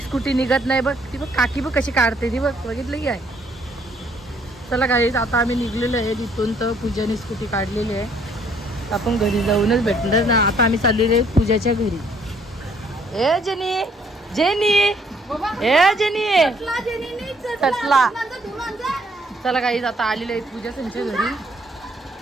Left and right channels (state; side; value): normal; both; correlation 0.64